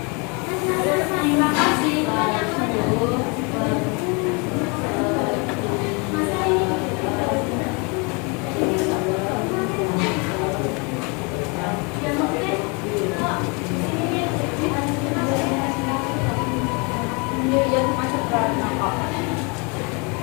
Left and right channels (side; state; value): right; quieter; 31.5 dB